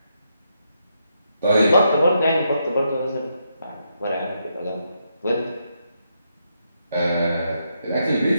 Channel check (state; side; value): inverted; both; correlation -0.80